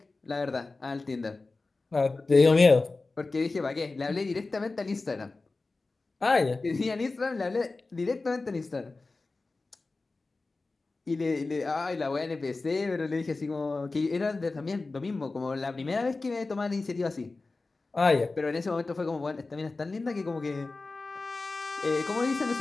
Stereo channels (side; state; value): right; quieter; 3.6 dB